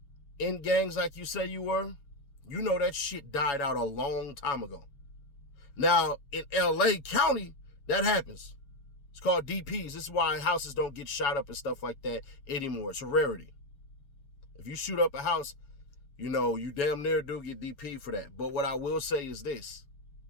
in gangs like you say you were, you know that shit died out a long time ago. Now, in LA County, that happens. It's called DPs. This is why houses don't get shot up and stuff like that anymore. It's a rarity. If you shoot up a house, You know, you damn near do get DP for that. But what I will say is this.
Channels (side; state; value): right; late; 7.1 ms